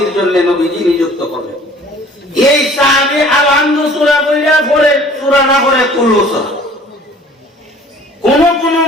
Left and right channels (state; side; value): normal; both; correlation 0.50